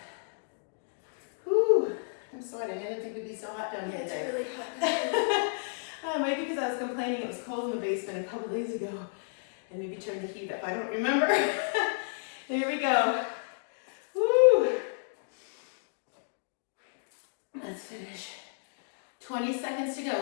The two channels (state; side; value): silent; right; digital silence